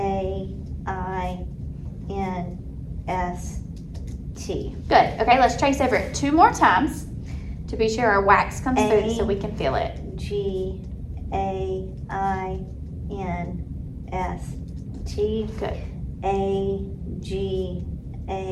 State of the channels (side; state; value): both; identical; correlation 1.00